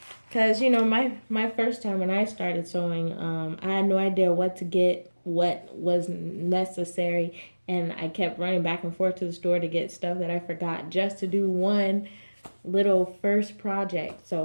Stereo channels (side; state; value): both; inverted; correlation -1.00